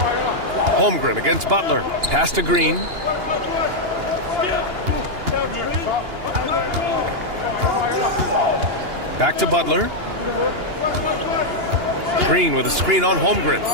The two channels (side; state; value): left; late; 2.9 ms